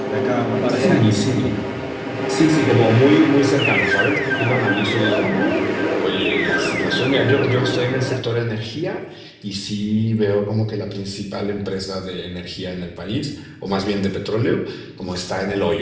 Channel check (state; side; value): identical; both; correlation 1.00